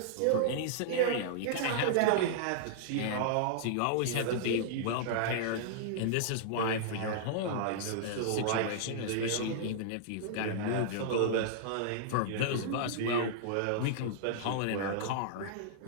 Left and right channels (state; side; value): different; both; correlation -0.01